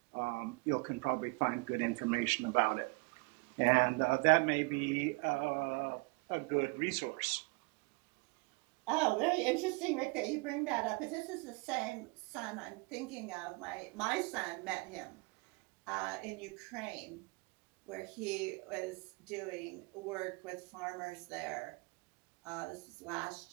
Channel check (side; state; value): left; quieter; 28.4 dB